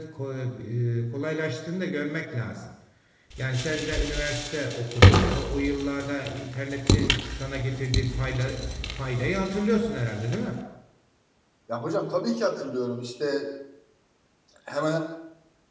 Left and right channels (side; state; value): both; identical; correlation 1.00